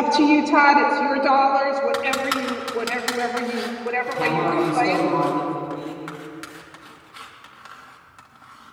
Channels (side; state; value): both; identical; correlation 1.00